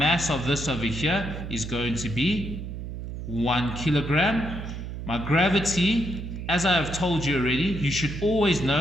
of this over here is going to be 1 kilogram. My gravity, as I have told you already, you should always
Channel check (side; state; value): right; noise; hum, 7 dB below the sound